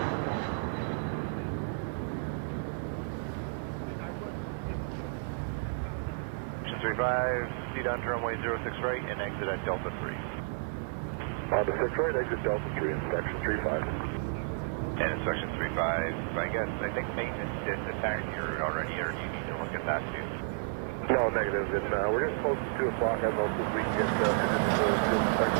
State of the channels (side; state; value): left; silent; digital silence